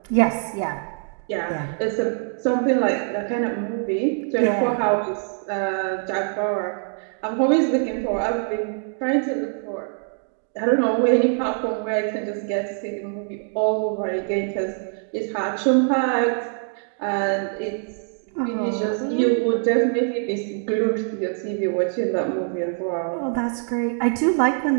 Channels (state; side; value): silent; left; 55 dB below the other